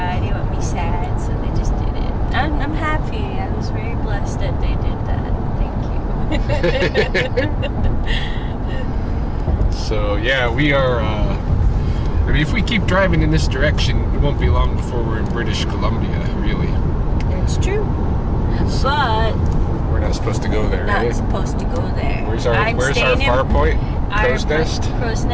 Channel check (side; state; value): both; identical; correlation 1.00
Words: They didn't want me sad, so they just did it. I'm happy. I was very blessed that they did that. Thank you. So yeah, we are. I mean, if we keep driving in this direction, it won't be long before we're in British Columbia. Really. It's true. But we're not supposed to go there. Not supposed to go there. Where's our far point? Crowsnest?